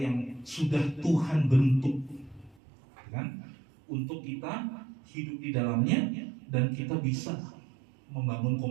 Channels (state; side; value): drops out; left; at 2.6 s